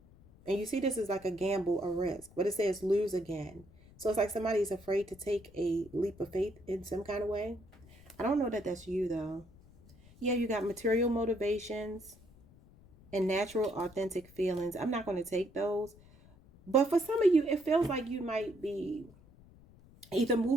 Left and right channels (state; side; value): noise; left; rumble, 24 dB below the sound